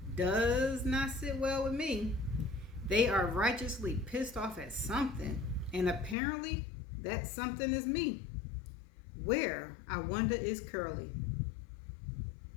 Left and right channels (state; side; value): drops out; right; at 6.2 s